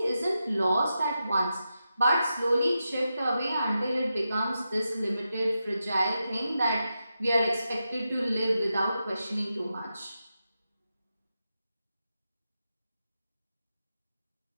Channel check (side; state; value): both; inverted; correlation -0.88